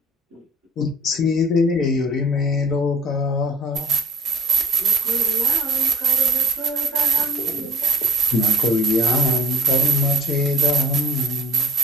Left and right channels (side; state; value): both; normal; correlation 0.52